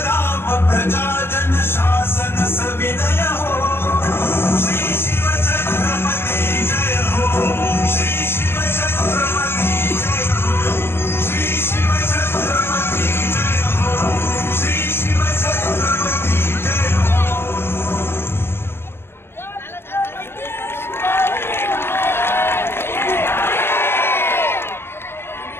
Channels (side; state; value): right; late; 0.11 ms